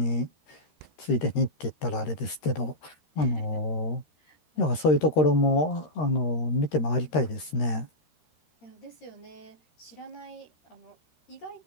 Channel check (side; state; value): right; late; 13 ms